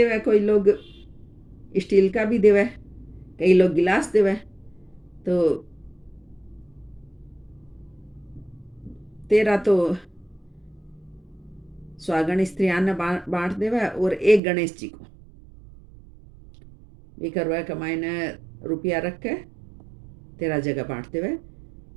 कोई लोग स्टील का भी देवे, कई लोग गिलास देवे। तो 13 तो सुहागन स्त्रियां ने बांट देवे और एक गणेश जी को भी करवा कमाई ने रुपया रख के 13 जगह बांट देवे।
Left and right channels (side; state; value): left; drops out; at 14.4 s